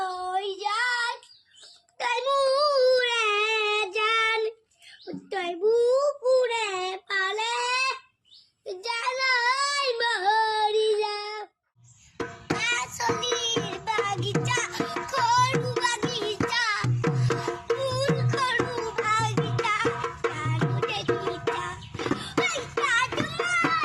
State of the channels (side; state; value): both; identical; correlation 1.00